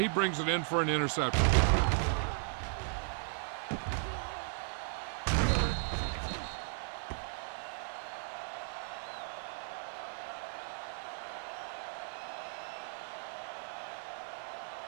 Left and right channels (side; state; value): left; silent; digital silence